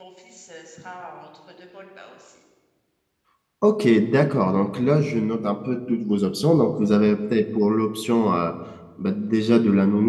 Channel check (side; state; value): both; identical; correlation 1.00